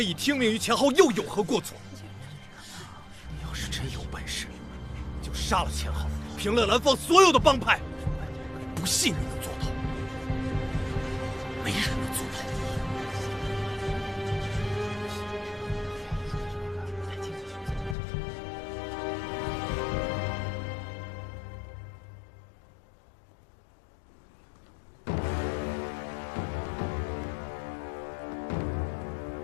已听命于钱浩，又有何过错？你要是真有本事，就杀了钱浩，平了兰芳所有的帮派。不信你能做到，没人能做到。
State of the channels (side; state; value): right; drops out; at 17.9 s